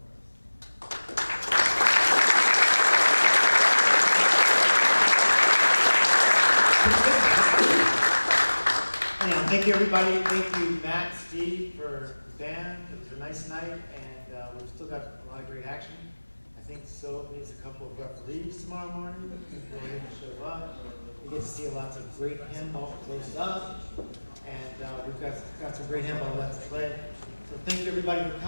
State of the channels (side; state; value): both; inverted; correlation -1.00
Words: us. And thank you, everybody. Thank you, Matt, Steve, for the band. It was a nice night, and we've still got a lot of great action. I think so needs a couple of referees tomorrow morning. Go ahead and show up. We get to see lots of great handball close up, and we've got some great handball left to play. So thank you everybody for